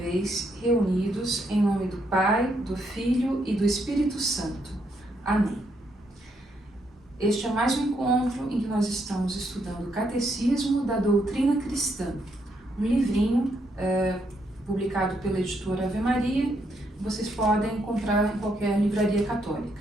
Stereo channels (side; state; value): both; normal; correlation 0.76